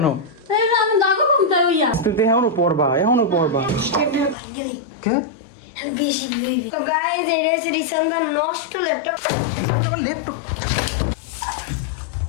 তুই এখনো পড়বা কে? তো গাইস এটা হচ্ছে রিসান্দার নষ্ট ল্যাপটপ। আমার ল্যাপটপ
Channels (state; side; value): drops out; right; at 4.4 s